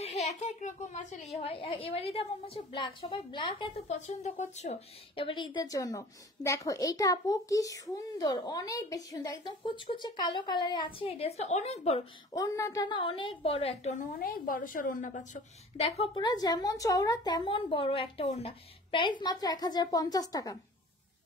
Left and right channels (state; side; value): normal; both; correlation 0.44